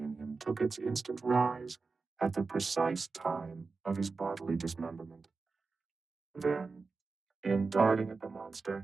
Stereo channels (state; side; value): quieter; left; 4.3 dB